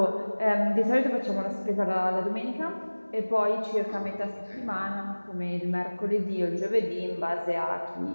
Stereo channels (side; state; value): both; inverted; correlation -1.00